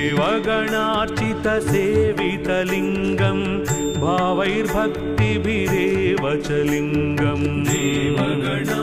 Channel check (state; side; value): identical; both; correlation 1.00